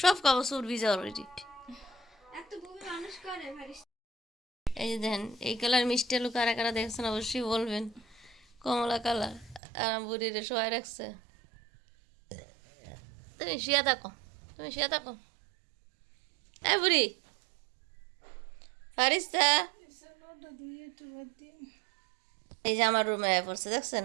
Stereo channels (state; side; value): drops out; left; at 9.6 s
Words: সব কাগজ চোর ভিজা অলরেডি। এই যে দেখেন, এই কালার মিষ্টি আলু কারা কারা দেখছেন অবশ্যই বলবেন। কমলা কালার, আর বুড়িরে শোয়াই রাখছে। তুমি শুয়ে থাকো, তুমি শুয়ে থাকো। এই বুড়ি ফারিস্তা, এই যে আমার রুমে পড়ছে দেখছেন,